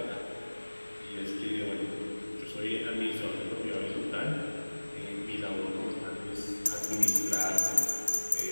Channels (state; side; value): inverted; both; correlation -1.00